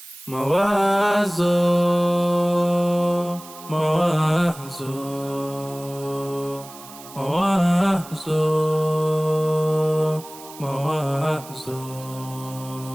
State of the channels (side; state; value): right; noise; hiss, 18 dB below the sound